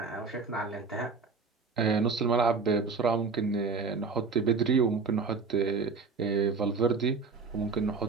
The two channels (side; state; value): left; quieter; 4.7 dB